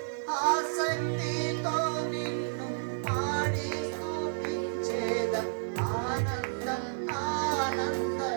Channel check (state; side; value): silent; left; 57 dB below the other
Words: ఆసక్తితో నిన్ను పాడి స్తుతించేద ఆనందం